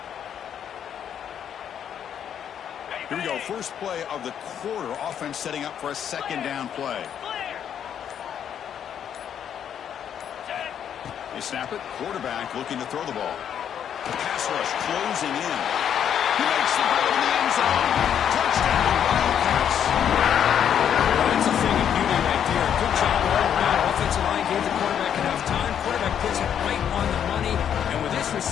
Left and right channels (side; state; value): right; quieter; 9.0 dB